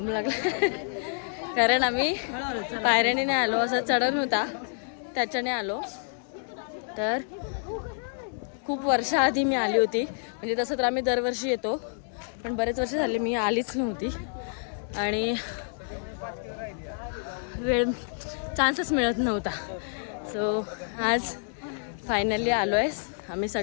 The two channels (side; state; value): right; silent; 59 dB below the other